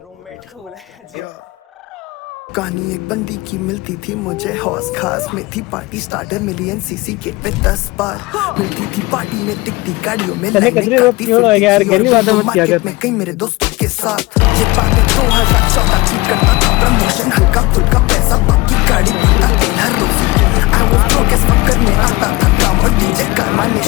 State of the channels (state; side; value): quieter; right; 21.9 dB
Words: रूममेट को बुलाया जाए. कहानी एक बंदी की मिलती थी मुझे हौस खास में थी party starter million CC gate पे 10 बार मिलती थी पार्टी में टिकटी गाड़ियों में लाइनें काटती मार्केट में कई मेरे दोस्तों के साथ ये बातें 2014 की करता था प्रमोशन हल्का फुल्का पैसा बाकी गाड़ी भरता तेल हर रोज I was broke as fuck करने आता था काम और डीजे कारवा ने